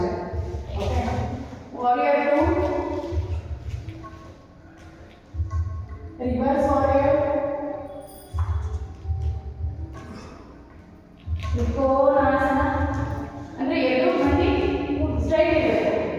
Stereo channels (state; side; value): identical; both; correlation 1.00